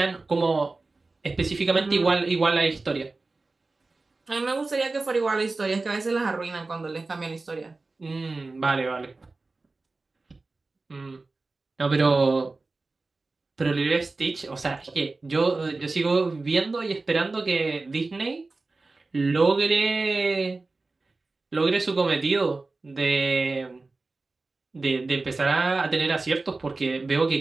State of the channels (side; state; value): left; quieter; 3.5 dB